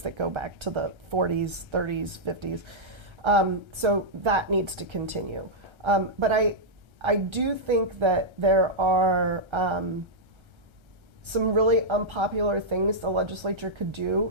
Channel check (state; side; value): late; left; 1.3 ms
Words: that go back to the 40s, 30s, 50s. So that needs to continue. But I do think that there are some really unpopular things the legislature could